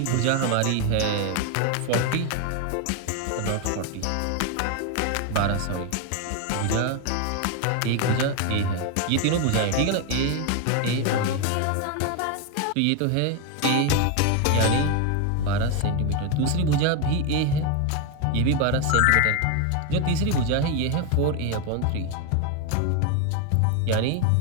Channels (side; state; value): both; different; correlation 0.01